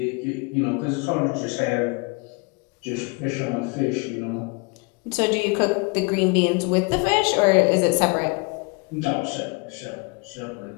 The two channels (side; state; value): right; quieter; 30.3 dB